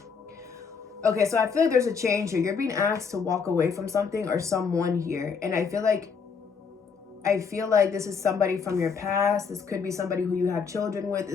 okay, so I feel like there's a change here. You're being asked to walk away from something or someone here, and I feel like this is somebody from your past. This could be somebody who you have children with.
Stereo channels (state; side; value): quieter; right; 5.8 dB